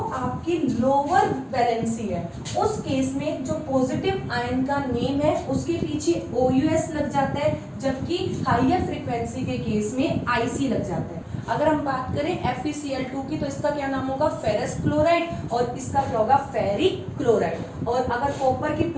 आपकी लोअर वैलेंसी है उस केस में जो पॉजिटिव आयन का नेम है उसके पीछे OUS लग जाता है, जबकि हायर फ्रीक्वेंसी के केस में IC लग जाता है। अगर हम बात करें FeCl2 की तो इसका क्या नाम होगा, फेरस क्लोराइड, और इसका क्या होगा, फेरिक क्लोराइड। और अगर कॉपर की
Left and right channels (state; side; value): identical; both; correlation 1.00